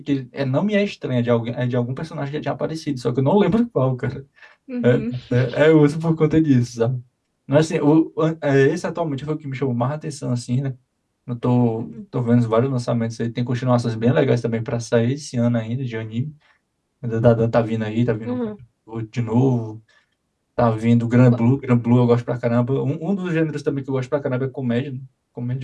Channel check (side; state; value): both; identical; correlation 1.00